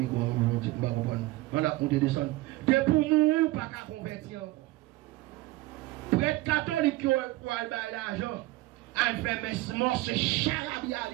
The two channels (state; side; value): quieter; left; 18.8 dB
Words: vais pas comprendre. On a compté descendre. De pour mourir, pas qu'à convertir encore. Prêtre catholique qui a l'argent, elle fait mes morts, c'est charabia